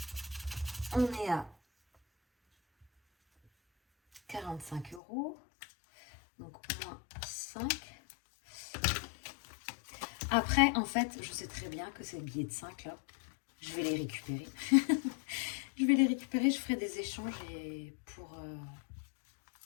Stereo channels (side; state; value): right; drops out; at 5.0 s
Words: On est à 45 euros. Donc, moins 5. Après, en fait, je sais très bien que ces billets de 5 là, je vais les récupérer. Je vais les récupérer, je ferai des échanges et pour...